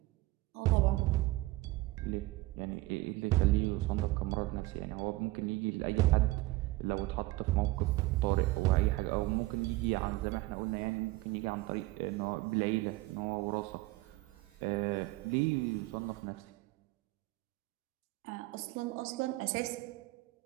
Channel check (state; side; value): quieter; left; 19.9 dB